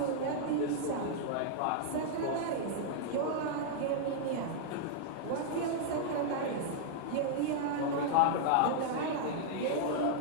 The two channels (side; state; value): both; different; correlation -0.01